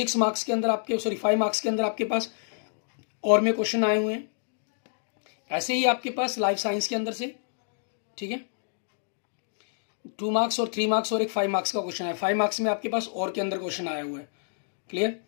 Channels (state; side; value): silent; right; digital silence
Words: मार्क्स के अंदर आपके, 5 मार्क्स के अंदर आपके पास और में क्वेश्चन आए हुए हैं। ऐसे ही आपके पास लाइफ साइंस के अंदर से, ठीक है, 2 मार्क्स और 3 मार्क्स और एक 5 मार्क्स का क्वेश्चन है। 5 मार्क्स में आपके पास और के अंदर क्वेश्चन आया हुआ है, क्लियर।